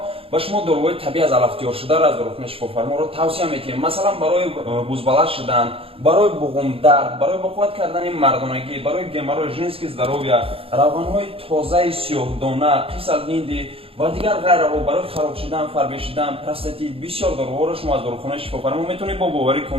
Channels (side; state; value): left; late; 0.27 ms